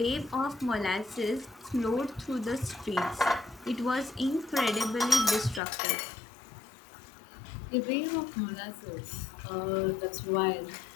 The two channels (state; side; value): drops out; right; at 5.6 s